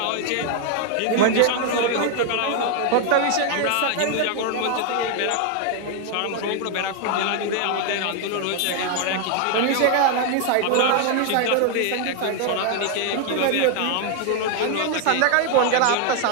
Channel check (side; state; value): both; different; correlation 0.01